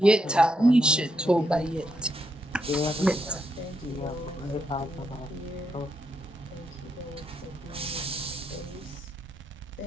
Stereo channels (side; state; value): both; normal; correlation 0.81